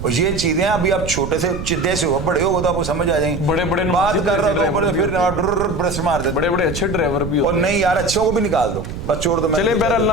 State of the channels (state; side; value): noise; right; rumble, 8 dB below the sound